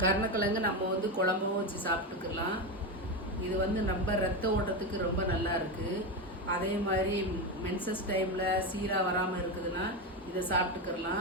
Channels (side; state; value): both; normal; correlation 0.15